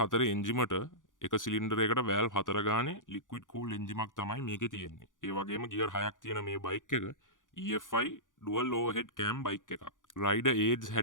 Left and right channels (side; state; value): right; late; 0.88 ms